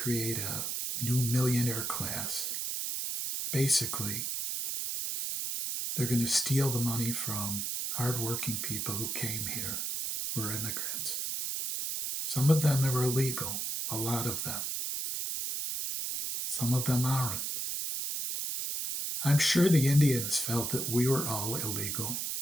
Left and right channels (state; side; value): noise; right; hiss, 2 dB below the sound